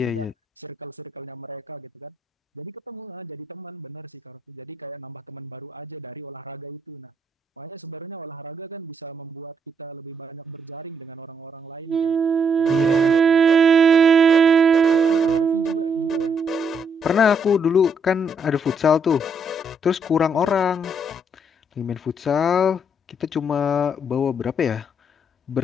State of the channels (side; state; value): both; normal; correlation 0.73